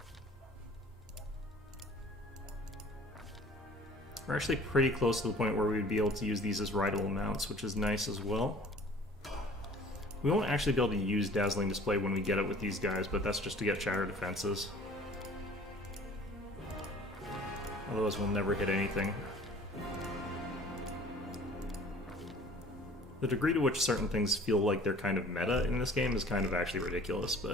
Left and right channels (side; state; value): both; normal; correlation 0.49